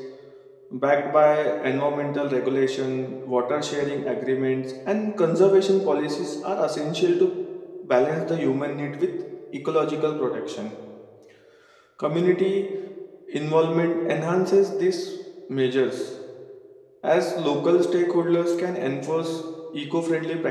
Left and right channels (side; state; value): both; identical; correlation 1.00